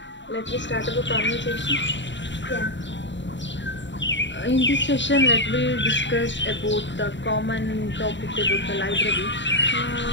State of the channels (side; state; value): right; late; 0.53 ms